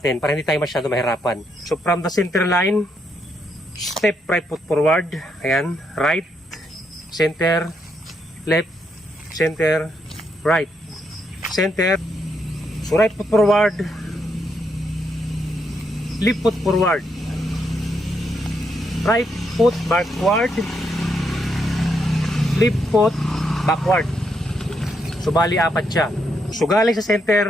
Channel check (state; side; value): normal; both; correlation 0.78